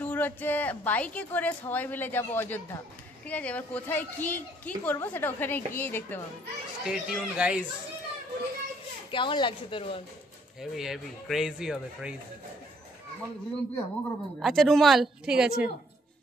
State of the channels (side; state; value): both; normal; correlation 0.65